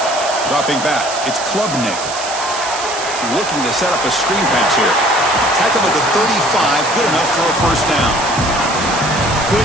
Dropping back. It's Klubnik. Looking to set up a screen pass here. Tackle at the 35. Good enough for a first down.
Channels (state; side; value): noise; right; hiss, 8 dB below the sound